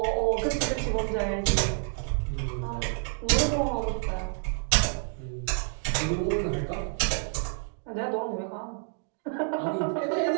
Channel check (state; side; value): silent; left; 59 dB below the other